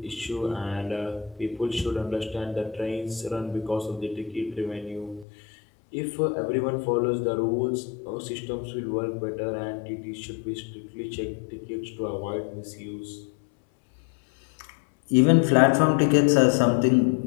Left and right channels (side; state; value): right; drops out; at 5.2 s